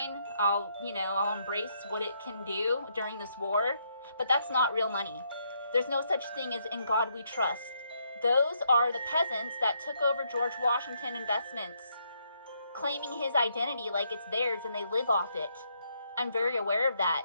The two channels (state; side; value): inverted; both; correlation -0.75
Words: I'll embrace what it can do during this war, but that's not real money. There's no such thing as in God we trust. Those are the peasants that took over George Washington investments, claiming his identity like it's theirs, and they live off it. I'm very aware of that.